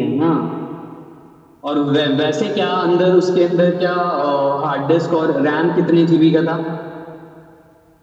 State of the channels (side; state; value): both; identical; correlation 1.00